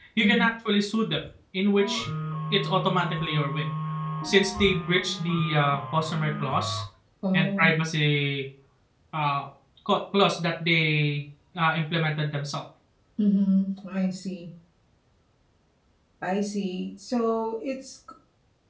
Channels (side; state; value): both; identical; correlation 1.00